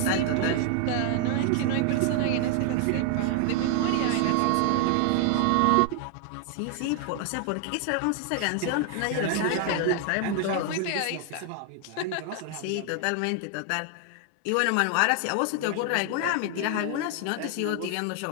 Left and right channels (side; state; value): both; different; correlation 0.00